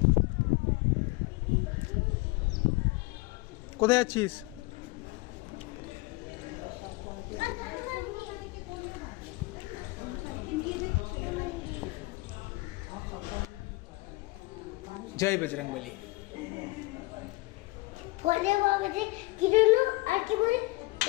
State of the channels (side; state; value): right; quieter; 23.1 dB